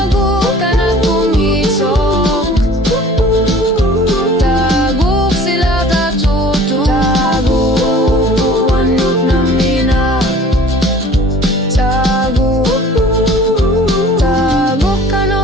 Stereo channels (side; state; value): both; normal; correlation 0.48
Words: kanak kumisok Tagu sila tatutu Tagu wanut namina Tagu